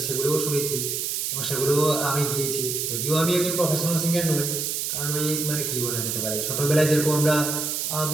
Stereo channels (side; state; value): right; noise; hiss, 1 dB below the sound